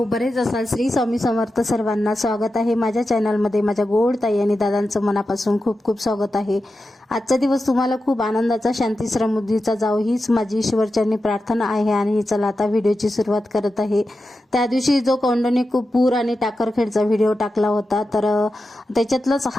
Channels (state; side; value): normal; both; correlation 0.91